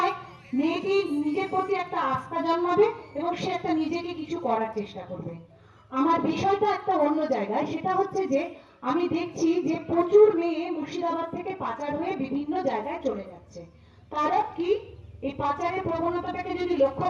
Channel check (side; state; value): both; identical; correlation 1.00